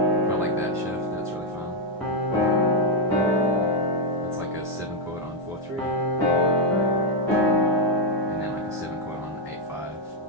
Quite like that shift, that's really fun. It's like a 7 chord on 4/3. And then like a 7 chord on 8/5.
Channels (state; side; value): normal; both; correlation 0.01